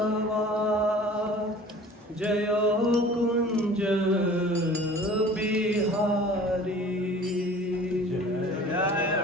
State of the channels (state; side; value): normal; both; correlation 0.46